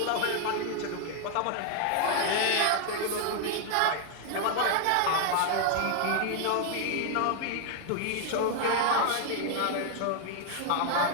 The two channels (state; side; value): different; both; correlation 0.00